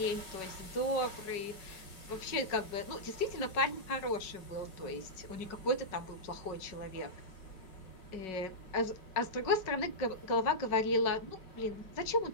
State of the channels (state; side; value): late; right; 5.3 ms